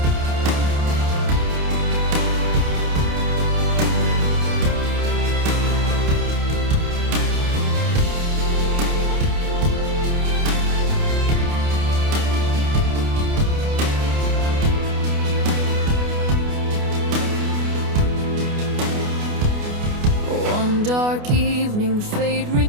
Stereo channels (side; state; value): left; late; 28 ms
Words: One dark evening, fate